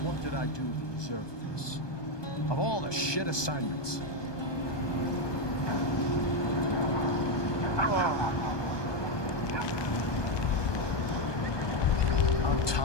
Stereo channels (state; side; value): late; right; 1.2 ms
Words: What did I do to deserve this? Of all the shit assignments. On